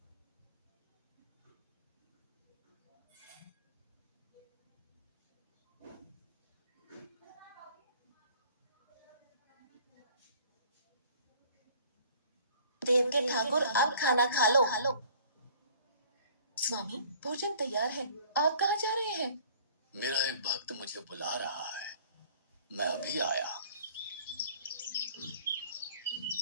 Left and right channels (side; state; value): both; inverted; correlation -0.52